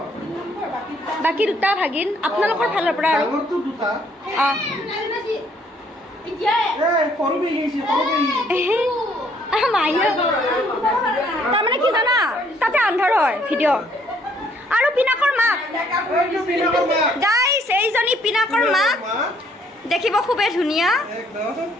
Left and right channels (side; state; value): both; normal; correlation 0.65